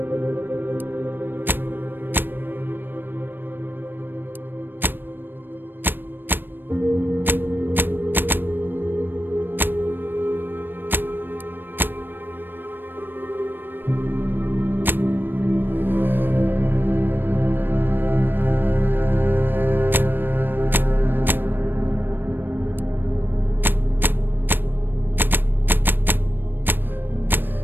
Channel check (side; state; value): left; late; 0.095 ms